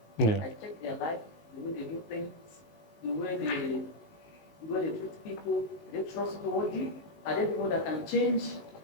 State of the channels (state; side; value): late; right; 19 ms